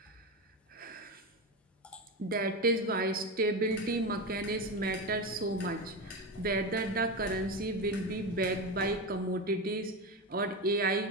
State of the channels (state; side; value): normal; both; correlation 0.18